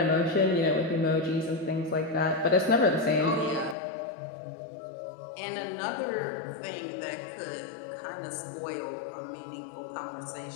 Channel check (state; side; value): drops out; right; at 3.8 s